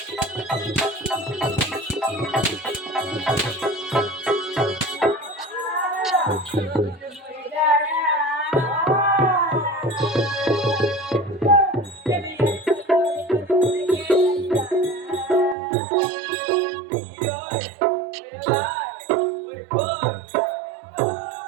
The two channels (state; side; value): drops out; left; at 15.6 s